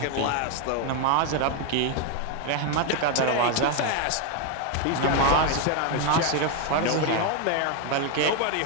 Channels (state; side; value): different; both; correlation 0.01